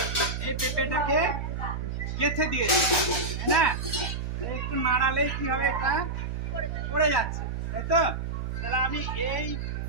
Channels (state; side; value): noise; right; hum, 4 dB below the sound